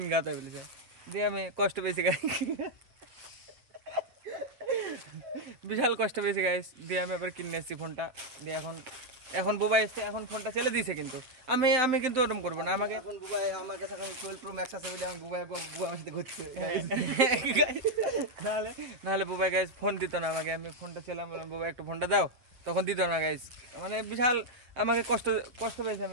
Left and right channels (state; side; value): late; left; 8.2 ms